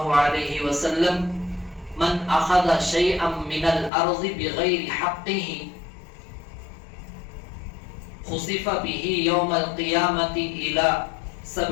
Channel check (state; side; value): drops out; right; at 3.9 s